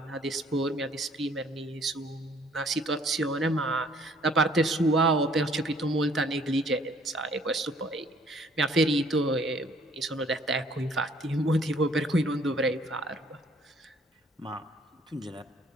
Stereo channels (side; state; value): both; normal; correlation 0.60